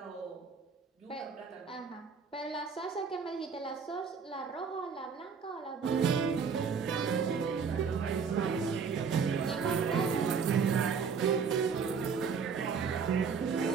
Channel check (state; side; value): quieter; left; 5.9 dB